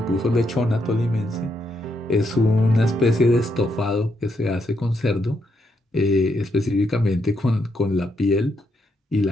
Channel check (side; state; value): both; normal; correlation 0.78